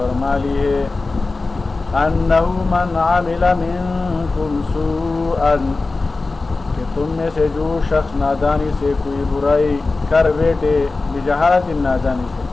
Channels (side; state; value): right; quieter; 3.6 dB